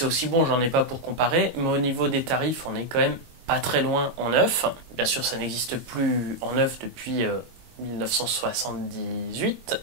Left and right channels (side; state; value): left; late; 22 ms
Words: aussi bon, j'en ai pas pour comparer, mais au niveau des tarifs, on est quand même pas très loin en neuf. Bien sûr, ça n'existe plus en neuf depuis 1978,